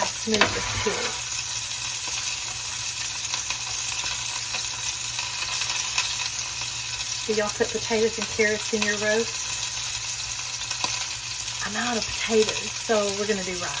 smooth this peels. Do y'all put potatoes and carrots in your roast? I'm out of potatoes, so we're gonna do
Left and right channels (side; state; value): both; identical; correlation 1.00